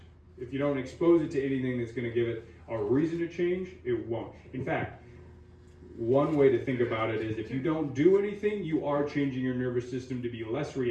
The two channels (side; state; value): both; identical; correlation 1.00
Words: If you don't expose it to anything that's going to give it a reason to change, it won't. In fact, one way to think about it is if you don't do anything, you are changing your nervous system to be less